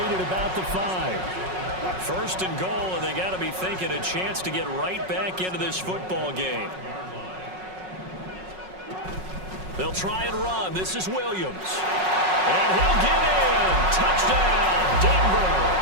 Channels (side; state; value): left; late; 5.4 ms